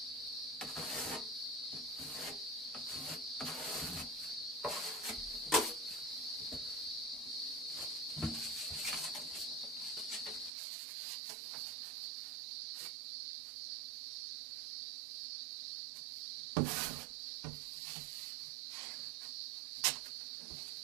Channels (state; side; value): drops out; left; at 10.5 s